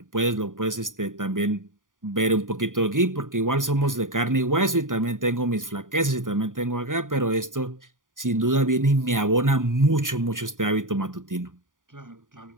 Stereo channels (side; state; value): left; late; 0.89 ms